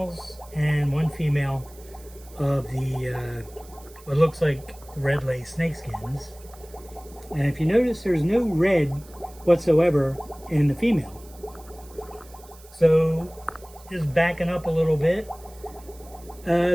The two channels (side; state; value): right; noise; hiss, 23 dB below the sound